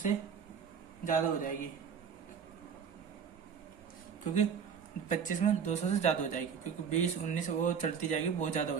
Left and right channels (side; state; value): left; quieter; 6.9 dB